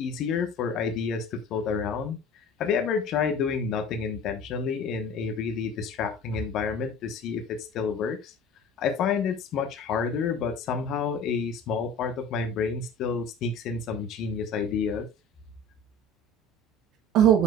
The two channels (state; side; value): normal; both; correlation 0.40